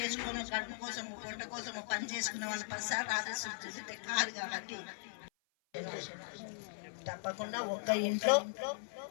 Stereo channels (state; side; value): silent; right; 52 dB below the other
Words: చేసుకొని కడుపు కోసం పొట్ట కోసం పని చేసుకునే వాళ్ళు 10 సార్లు ఆదేశం చూస్తే కాదు. కాబట్టి తప్పకుండా ఒక్క ఇంట్లో